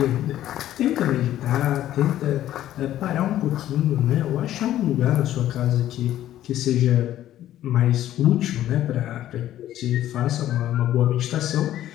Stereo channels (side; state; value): right; quieter; 12.7 dB